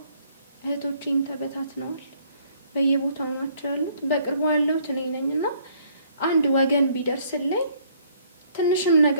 እህቶቼም ተበታትነዋል። በየቦታው ናቸው ያሉት። በቅርቡ ያለሁት እኔ ነኝ እና አንድ ወገን ቢደርስልኝ ትንሽም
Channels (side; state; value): both; inverted; correlation -0.63